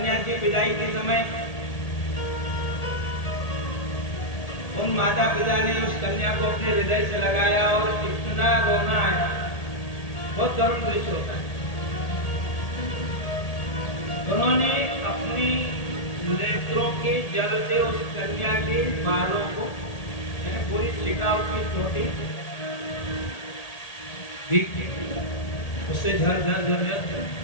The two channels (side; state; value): right; late; 1.8 ms